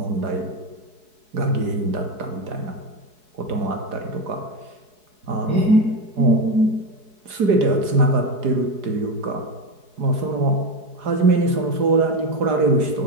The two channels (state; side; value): late; left; 4.9 ms